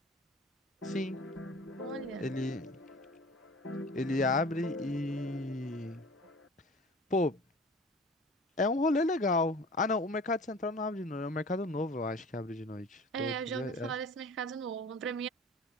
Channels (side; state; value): both; normal; correlation 0.42